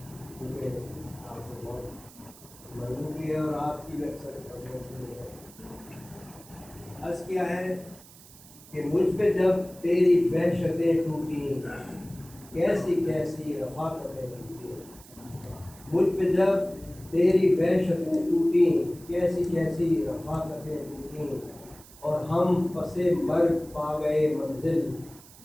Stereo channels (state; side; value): noise; right; hiss, 21 dB below the sound